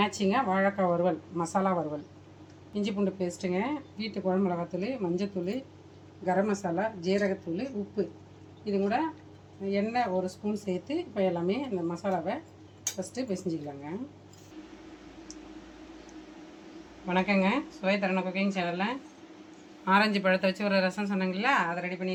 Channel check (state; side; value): identical; both; correlation 1.00